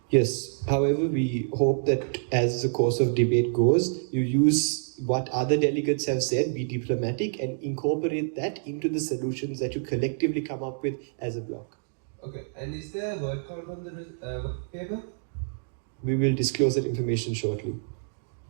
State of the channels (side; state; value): left; silent; digital silence